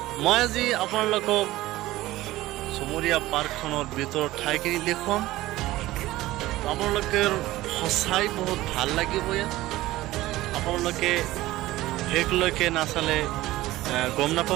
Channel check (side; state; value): left; quieter; 17.0 dB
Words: মই আজি আপোনালোকক চমৰীয়া পাৰ্কখনৰ ভিতৰত ঠাইখিনি দেখুৱাম। আপোনালোকে সঁচাই বহুত ভাল লাগিব ইয়াত। আপোনালোকে শেষলৈকে নাচালে গম